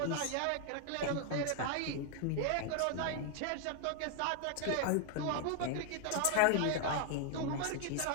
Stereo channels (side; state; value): both; different; correlation 0.00